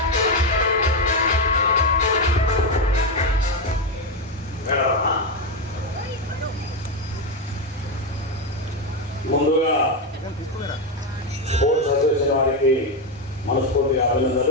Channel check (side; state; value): both; normal; correlation 0.09